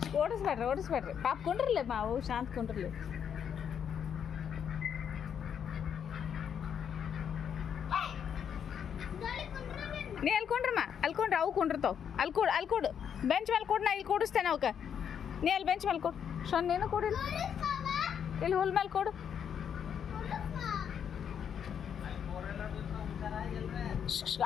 ಓಡಿಸ್ಬೇಡ್ರಿ ಪಾಪ ಕೊಂಡ್ರಲ್ಲ ಮಾವು ಶಾಂತ ಕೊಂಡ್ರಲ್ಲ. ನೀ ಅಲ್ಕೊಂಡ್ರಮ್ಮ ಅಲ್ಕೊಂಡ್ರೆ ಅವು ಕೊಂಡಿರ್ತಾವ. ಅಲ್ಲಿ ಕೊಡು ಬೆಂಚ್ ಮೇಲೆ ಕೊಡು. ನಾ ಇಲ್ಲಿ ಕೊಡಿಸ್ತೇನೆ ಅವಕ್ಕೆ. ನೀ ಅಲ್ಲಿ ಬೆಂಚ್ ಮೇಲೆ ಕೊಡು. ಶೋನ್ ನೀನು ಕೊಡಿಲ್ಲ. ಇಲ್ಲಿ ಹುಲ್ ಮೇಲೆ ಕೊಡು.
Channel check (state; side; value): quieter; right; 8.1 dB